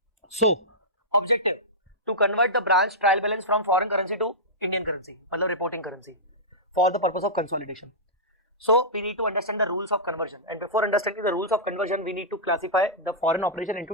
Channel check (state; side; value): normal; both; correlation -0.14